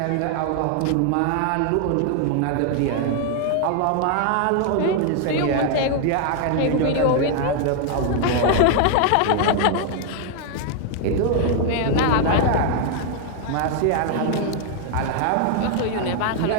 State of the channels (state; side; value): different; both; correlation 0.00